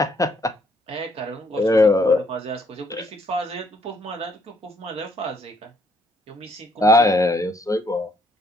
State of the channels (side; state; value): both; normal; correlation 0.69